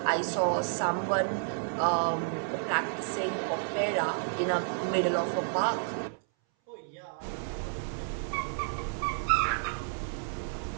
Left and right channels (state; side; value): silent; left; 57 dB below the other